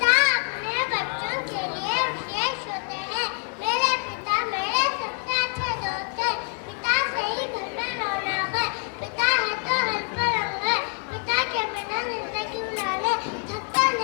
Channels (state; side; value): quieter; right; 39.9 dB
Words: अपने बच्चों के लिए विशेष होते हैं। मेरे पिता मेरे सबसे अच्छे दोस्त हैं। पिता से ही घर में रौनक है। पिता है तो हर पर रंग है। पिता के बिना जिंदगी गुजारने थकता